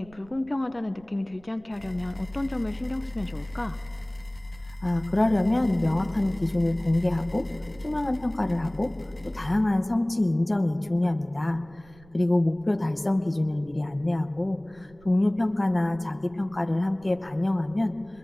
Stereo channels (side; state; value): right; noise; rumble, 25 dB below the sound